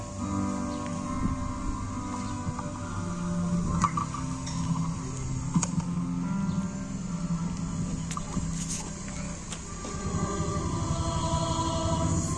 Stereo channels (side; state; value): both; identical; correlation 1.00